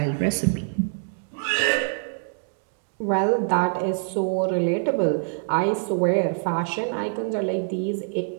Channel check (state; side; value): silent; left; digital silence